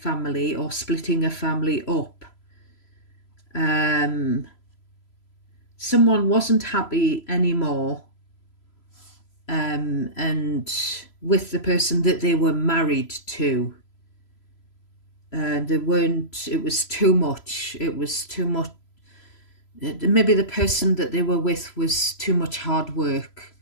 or splitting a family up. Someone wasn't happy anymore, and with the person that they were married to. They weren't, it was too much. Maybe the person that they were with was too much hard work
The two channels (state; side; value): late; right; 3.0 ms